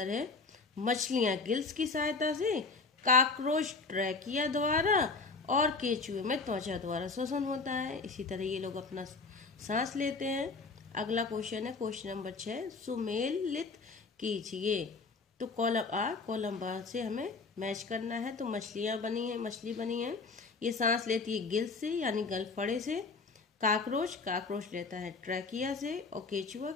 है मछलियां गिल्स की सहायता से, काकरोच ट्रैकिया द्वारा और केचुए में त्वचा द्वारा श्वसन होता है। इसी तरह ये लोग अपना सांस लेते हैं। अगला क्वेश्चन है क्वेश्चन नंबर 6, सुमेलित कीजिए। तो कॉलम आ कॉलम बा से हमें मैच करना है। तो मछली बनी है, ये सांस लेती है गिल्स से यानी गलफड़े से। काकरोच लेता है ट्रैकिया से और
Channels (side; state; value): right; quieter; 4.1 dB